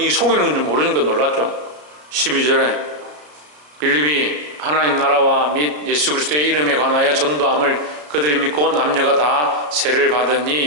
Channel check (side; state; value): left; late; 33 ms